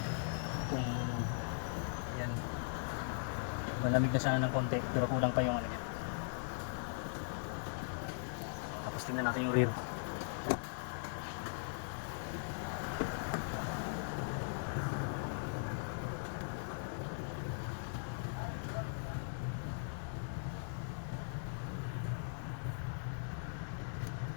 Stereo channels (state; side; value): silent; right; 51 dB below the other